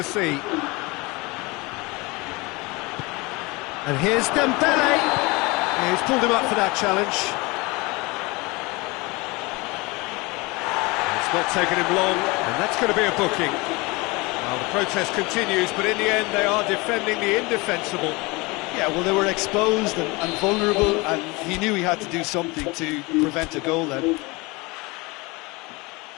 see. And here's Dembele. He's pulled him up for that challenge. It's not taken him long, and that's going to be a booking. Well, the protest continues, but in the end they are defending the indefensible. Yeah, well, they were exposed and vulnerable, and he knew he had to do something to prevent a goal then.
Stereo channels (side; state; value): right; quieter; 25.0 dB